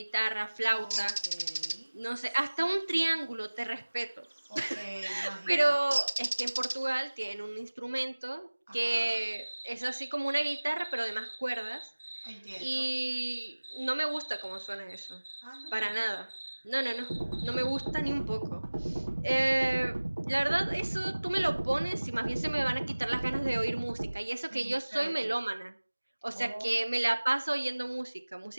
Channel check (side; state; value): both; inverted; correlation -1.00